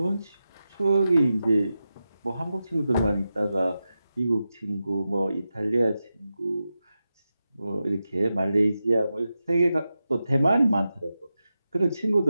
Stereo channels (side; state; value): both; inverted; correlation -0.91